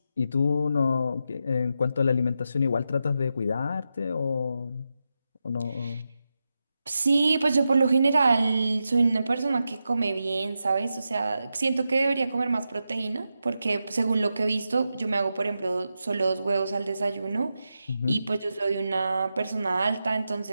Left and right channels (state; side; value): inverted; both; correlation -0.88